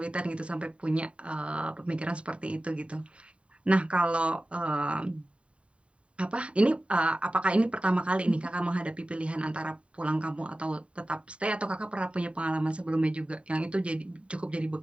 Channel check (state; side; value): late; left; 0.061 ms